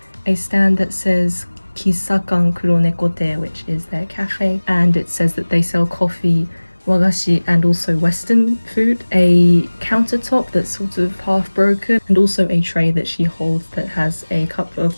a stand that says Kisakan Kuronekote, which is their cafe, and it says that they sell coffee, wagashi, and also Western food, a countertop that's sort of half broken, and also a tray that she holds that has a cup of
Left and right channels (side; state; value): both; inverted; correlation -1.00